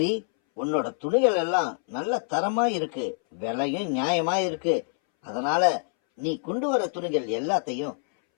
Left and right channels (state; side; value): silent; right; 61 dB below the other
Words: உன்னோட துணிகள் எல்லாம் நல்ல தரமா இருக்கு, விலையும் நியாயமா இருக்கு. அதனால நீ கொண்டு வர துணிகள் எல்லாத்தையும்